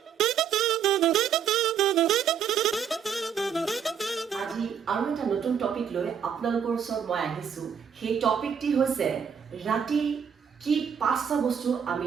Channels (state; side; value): quieter; left; 7.6 dB